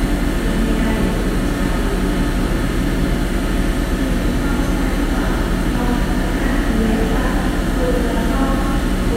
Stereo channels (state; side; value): identical; both; correlation 1.00